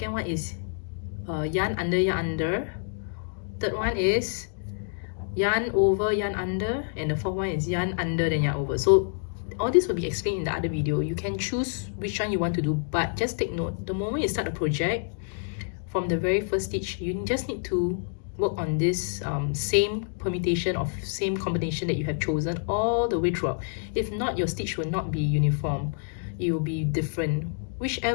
one is yarn under. Third one is yarn over, yarn under, and the fourth one is yarn under then yarn over. So all this will be explained in the other video. You can choose which one you want to do, but just take note, the moment you start a project, from the very first stitch, you just need to work on this same permutation of same combination that you have chosen all the way throughout. If not, your stitch will not be uniform. It will be different.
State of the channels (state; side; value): silent; right; digital silence